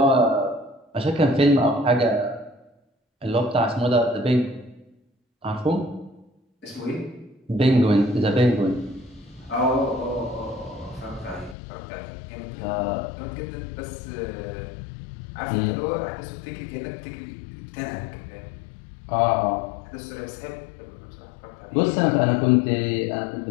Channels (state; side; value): drops out; right; at 11.6 s